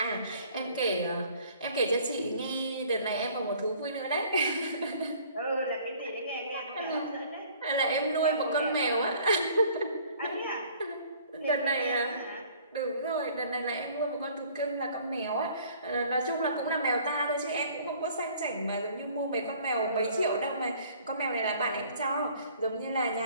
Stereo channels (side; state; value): both; inverted; correlation -0.54